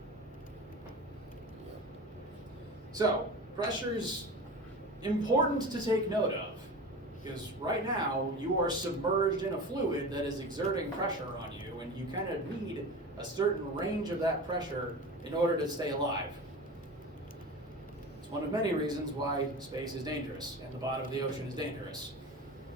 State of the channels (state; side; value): normal; both; correlation 0.32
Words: So, pressure's important to take note of, because right now you are submerged in a fluid that is exerting pressure on you, and you kind of need a certain range of that pressure in order to stay alive. It's one of many reasons why space is dangerous and the bottom of the ocean is dangerous.